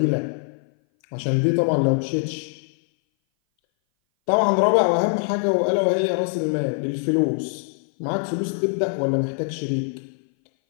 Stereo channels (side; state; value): right; silent; 59 dB below the other